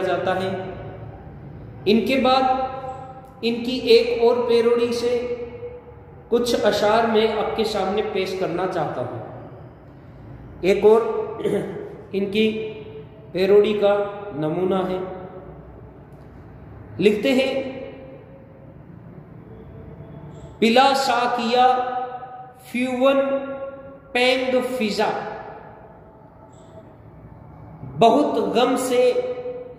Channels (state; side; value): identical; both; correlation 1.00